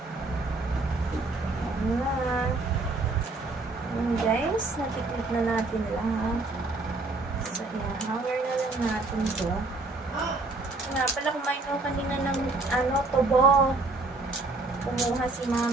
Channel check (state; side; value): quieter; left; 3.3 dB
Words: Ayan. Ayan guys, natiklit na natin lang. So, ayan. Hanger na lang natin to. Nga pala, kumain ko kanina ng tubo. Kumuha si